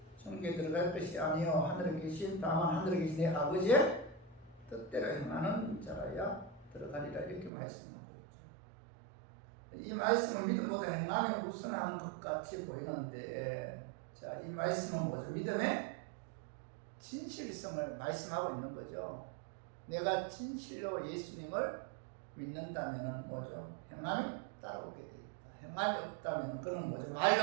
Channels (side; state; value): left; drops out; at 7.5 s